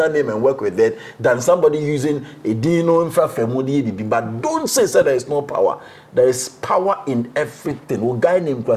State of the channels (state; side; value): identical; both; correlation 1.00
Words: name and work with that than somebody using a Dino infra family. But don't say there is no power. There is power in everything. A guy named